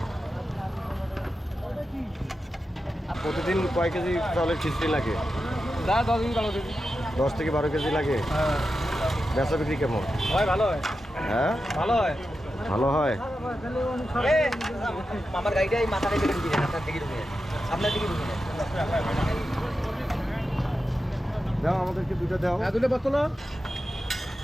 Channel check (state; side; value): normal; both; correlation 0.90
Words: প্রতিদিন কয় কেজি চাউলের খিচুড়ি লাগে? 10 দিন ভালো দিন। 10 থেকে 12 কেজি লাগে। হ্যাঁ, বেচা বিক্রি কেমন? হয় ভালো হয়। হ্যাঁ ভালো হয়। ভালো হয়। মামার গাড়িটা এই মাথাটা কেটে দিবেন, আপনার দিকে ঢুকে। আপনার দিকে ঢুকে। দাও আমাদেরকে দুটো দাও। হ্যাঁ, দুটো বোতল।